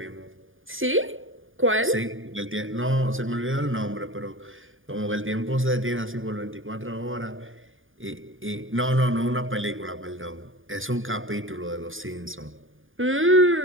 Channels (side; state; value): left; late; 0.58 ms